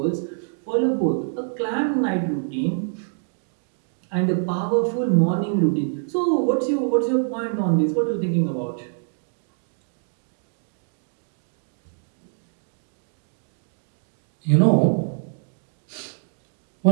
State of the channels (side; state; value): left; silent; digital silence